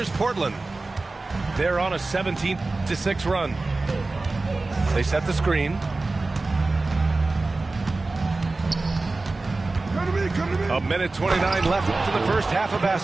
Portland. They're on a 17-6 run. They set the screen. A minute 29 left to the first half of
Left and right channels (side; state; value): left; quieter; 3.3 dB